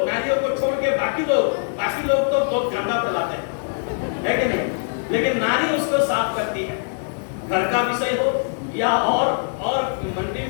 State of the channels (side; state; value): right; silent; 64 dB below the other